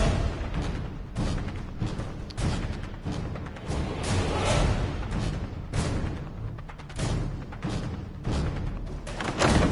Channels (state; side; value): identical; both; correlation 1.00